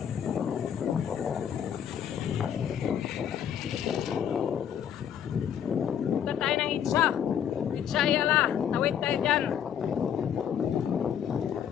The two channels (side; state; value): right; quieter; 9.0 dB